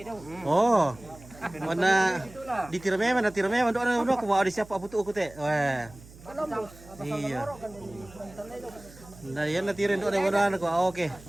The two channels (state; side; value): noise; right; hum, 20 dB below the sound